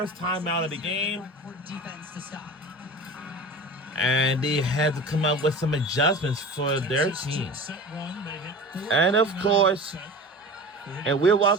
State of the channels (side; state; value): both; normal; correlation 0.35